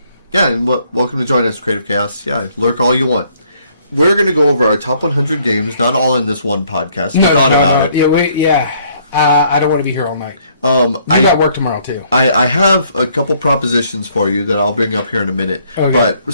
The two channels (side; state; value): both; inverted; correlation -0.65